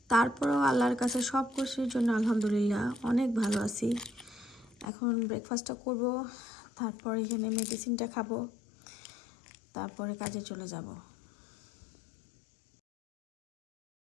তারপরেও আল্লাহর কাছে সব কিছুর জন্য আলহামদুলিল্লাহ অনেক ভালো আছি। এখন ব্রেকফাস্টটা করব, তারপর এখানে মেডিসিনটা খাবো, তারপরে কাজে চলে যাব।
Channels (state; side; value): drops out; right; at 4.9 s